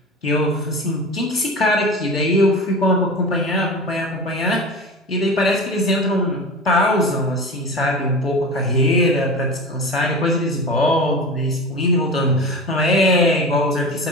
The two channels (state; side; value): normal; both; correlation 0.31